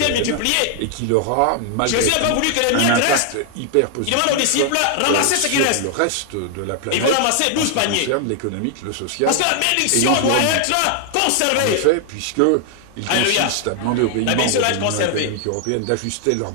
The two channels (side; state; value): both; different; correlation 0.00